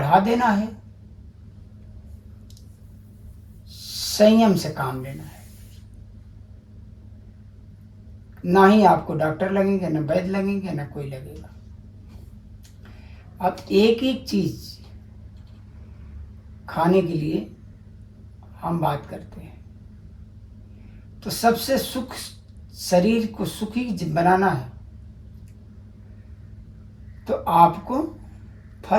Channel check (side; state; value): both; identical; correlation 1.00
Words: देना है, संयम से काम लेना है। ना ही आपको डॉक्टर लगेंगे, ना वैद्य लगेंगे, ना कोई लगेगा। अब एक एक चीज खाने के लिए हम बात करते हैं, तो सबसे सुख, शरीर को सुखी बनाना है तो आपको